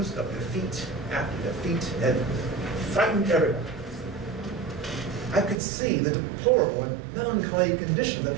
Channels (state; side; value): drops out; left; at 5.6 s